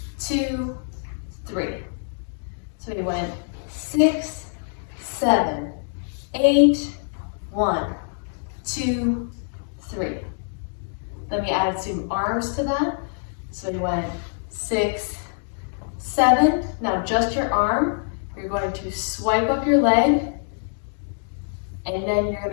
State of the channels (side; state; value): right; silent; digital silence